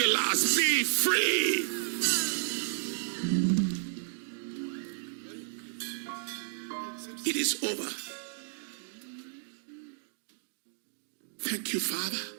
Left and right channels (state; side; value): silent; left; digital silence